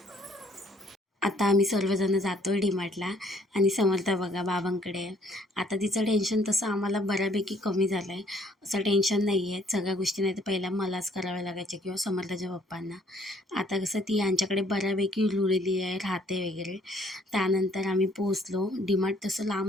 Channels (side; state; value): both; normal; correlation 0.62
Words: आता आम्ही सर्वजण जातो आहे डीमार्टला. आणि समर्था बघा बाबांकडे. आता तिचं टेन्शन तसं आम्हाला बऱ्यापैकी कमी झालं आहे. असं टेन्शन नाही आहे. सगळ्या गोष्टी नाही तर पहिला मलाच कराव्या लागायच्या किंवा समर्थाच्या पप्पांना. आता कसं ती यांच्याकडे बऱ्यापैकी रुळलेली आहे, राहते वगैरे. त्यानंतर आम्ही पोचलो. डीमार्ट तसं